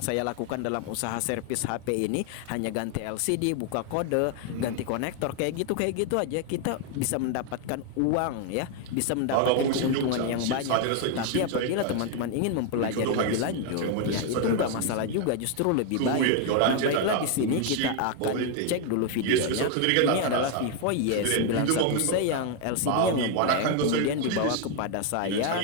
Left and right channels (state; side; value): different; both; correlation 0.01